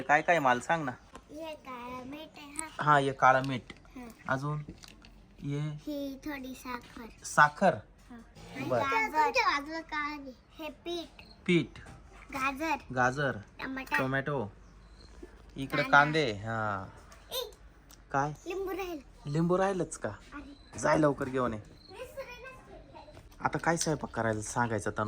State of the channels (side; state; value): both; identical; correlation 1.00